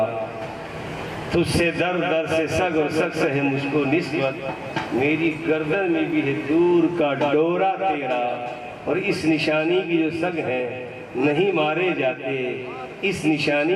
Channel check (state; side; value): identical; both; correlation 1.00